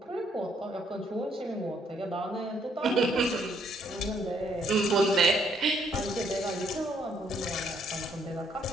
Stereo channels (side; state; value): both; normal; correlation 0.70